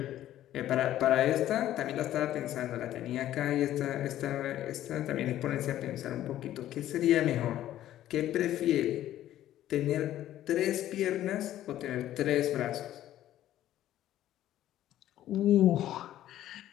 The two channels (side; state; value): right; quieter; 12.9 dB